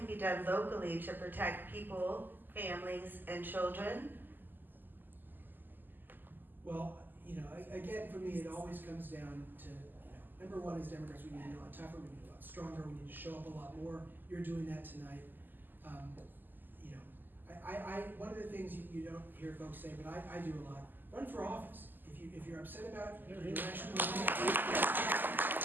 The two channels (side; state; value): left; late; 0.090 ms